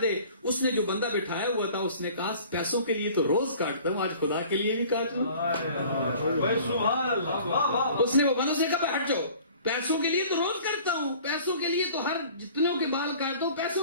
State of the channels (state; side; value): inverted; both; correlation -0.48